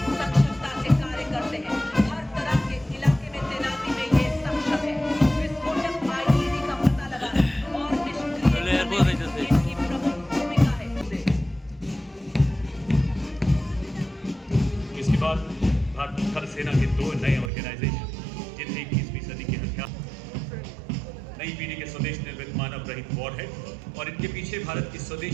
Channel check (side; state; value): left; drops out; at 17.5 s